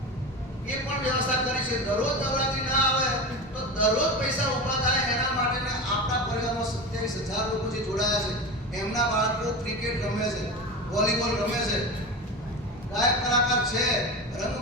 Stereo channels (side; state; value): both; normal; correlation 0.25